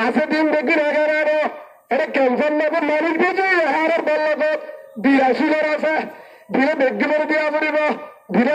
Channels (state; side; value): identical; both; correlation 1.00